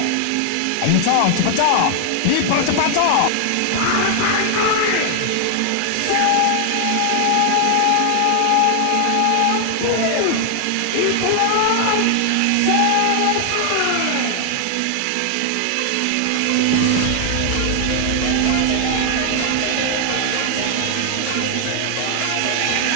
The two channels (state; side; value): different; both; correlation 0.00